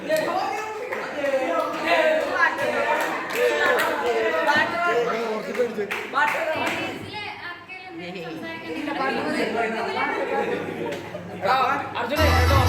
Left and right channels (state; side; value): identical; both; correlation 1.00